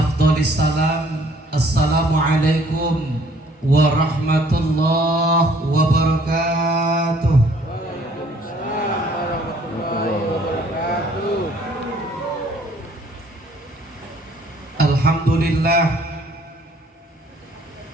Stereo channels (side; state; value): both; normal; correlation 0.60